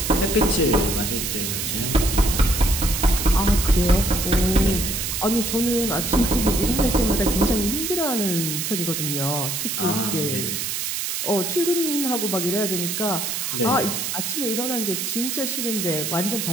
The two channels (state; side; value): noise; right; hiss, 2 dB below the sound